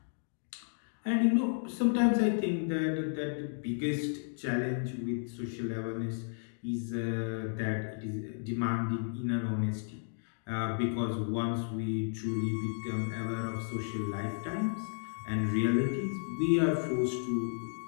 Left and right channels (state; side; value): silent; right; digital silence